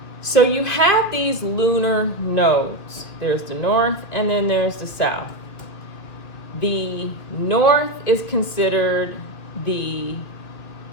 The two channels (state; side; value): late; right; 2.6 ms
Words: So you have these lunar nodes. There's the north and then there's the south. The north is considered the